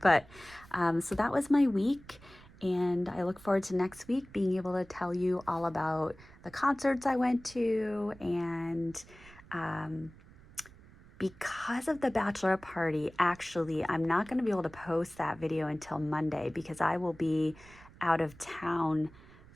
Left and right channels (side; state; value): right; noise; rumble, 22 dB below the sound